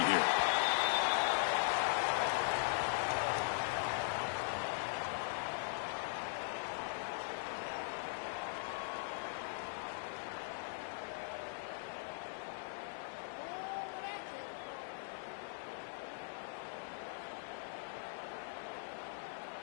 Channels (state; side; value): silent; right; digital silence